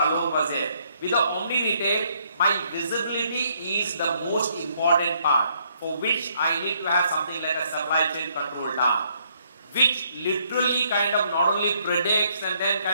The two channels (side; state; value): both; inverted; correlation -0.69